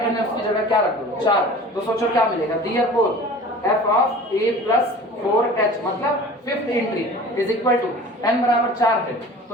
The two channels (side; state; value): both; normal; correlation 0.42